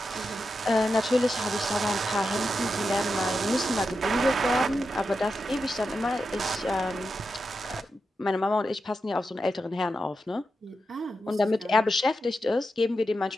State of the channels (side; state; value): both; normal; correlation 0.88